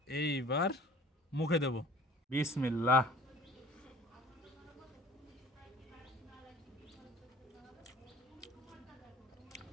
এইবার মুখে দেব। বিসমিল্লাহ।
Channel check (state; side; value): normal; both; correlation 0.46